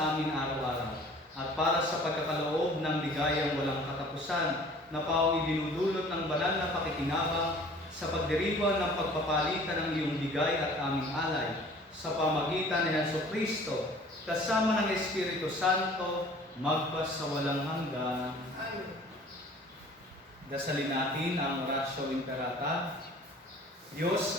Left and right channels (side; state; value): both; normal; correlation 0.49